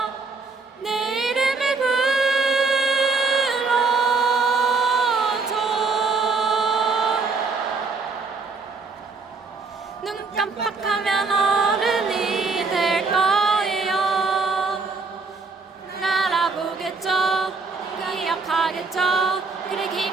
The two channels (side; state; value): left; quieter; 4.3 dB